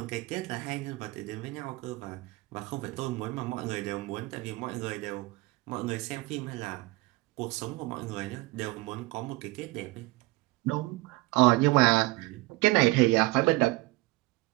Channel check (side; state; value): left; quieter; 22.0 dB